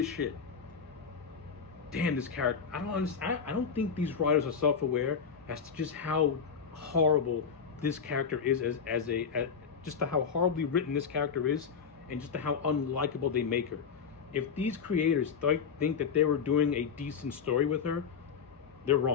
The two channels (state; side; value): quieter; right; 6.4 dB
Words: shit. Damn, this character. I don't think these writers are self-aware as to just how horrible this character is just to how horribly written this character is, and just to how unlikable they make her. If these creators think that they were doing a decent story with her, they're